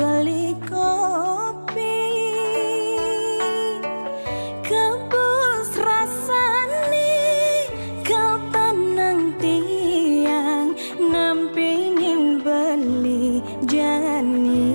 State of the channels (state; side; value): inverted; both; correlation -1.00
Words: kopi kebus rasane kau tenang tiang nampingin beli jani